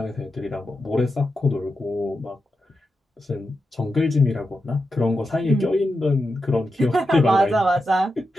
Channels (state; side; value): normal; both; correlation 0.88